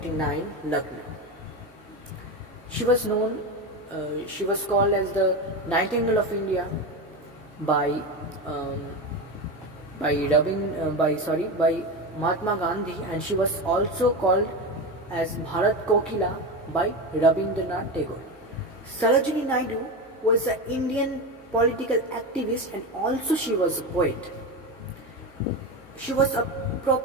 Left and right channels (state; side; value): normal; both; correlation 0.19